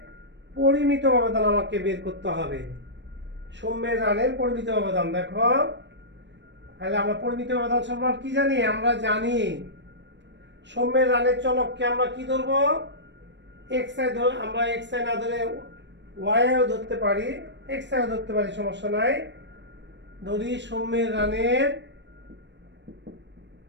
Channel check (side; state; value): left; late; 0.52 ms